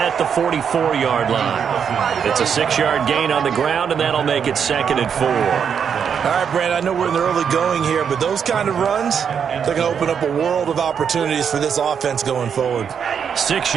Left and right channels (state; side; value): quieter; left; 7.3 dB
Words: the 44-yard line. It's a 6-yard gain on the ground, and that'll make it 2nd and 4. All right, Brand, I know we're in the early going here, but those kind of runs, they're going to open up a world of opportunities for this offense going forward. 6